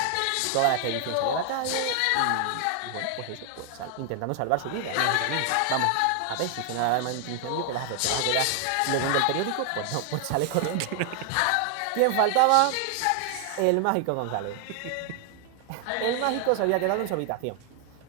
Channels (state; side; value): different; both; correlation 0.00